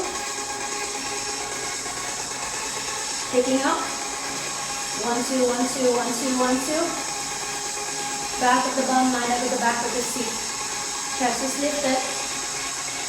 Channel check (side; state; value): both; identical; correlation 1.00